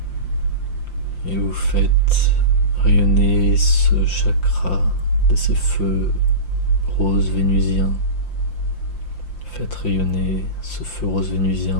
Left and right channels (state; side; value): late; right; 5.8 ms